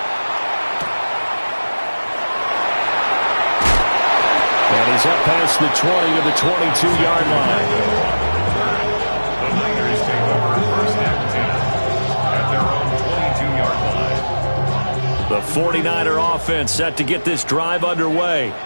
And he's up past the 20 to the 22-yard line. The Niners take over 1st and 10 at their own 22-yard line. The 49er offense set to get this drive underway.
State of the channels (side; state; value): both; inverted; correlation -1.00